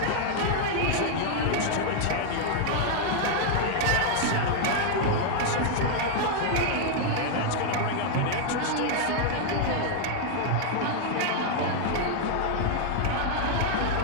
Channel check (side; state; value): both; different; correlation 0.00